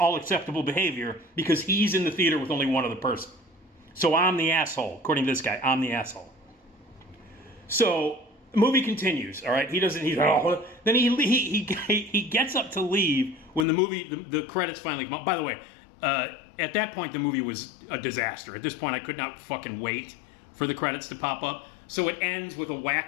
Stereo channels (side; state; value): right; drops out; at 13.7 s